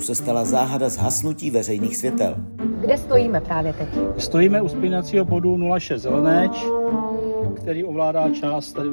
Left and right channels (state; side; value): inverted; both; correlation -1.00